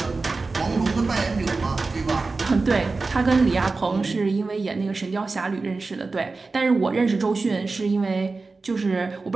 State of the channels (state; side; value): quieter; left; 3.8 dB